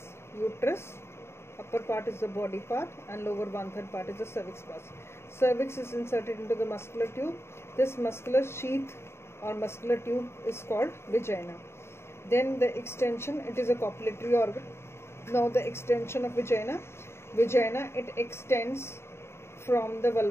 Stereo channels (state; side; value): late; right; 0.12 ms